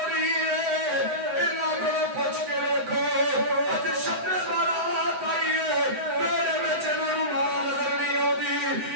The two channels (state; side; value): late; left; 7.9 ms